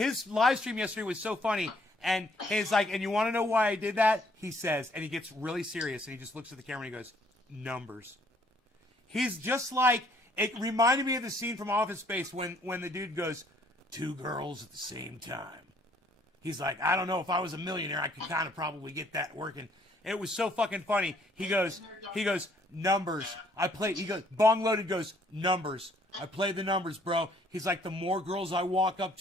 live stream yesterday was so funny. And he's like, and you want to know why I did that? He says, and he gets really serious, and he just looks at the camera and he goes, numbers. He's just like, it reminded me of the scene from Office Space when the dude goes, 2 girls at the same time. He's like, I don't know, if I was a millionaire, I could kind of probably get that working. It was so fucking funny. He goes, numbers. He goes, Bong Loaded goes, numbers. I play the numbers, bro. He's like, the more girls I walk up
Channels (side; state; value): both; normal; correlation 0.64